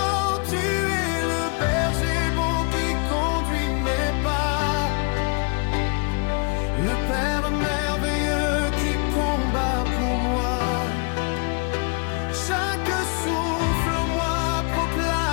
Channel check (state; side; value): quieter; right; 35.7 dB